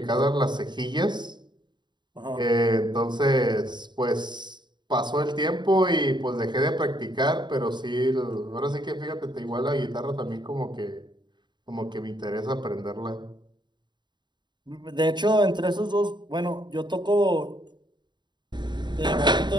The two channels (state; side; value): late; left; 0.22 ms